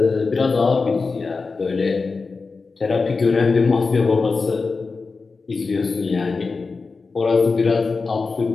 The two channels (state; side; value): quieter; right; 4.3 dB